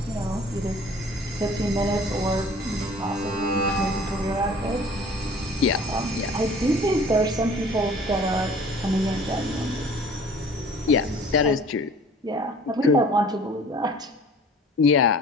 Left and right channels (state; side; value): normal; both; correlation 0.48